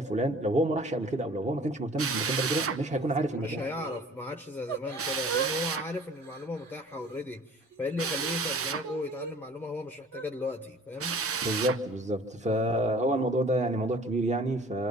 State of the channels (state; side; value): normal; both; correlation 0.49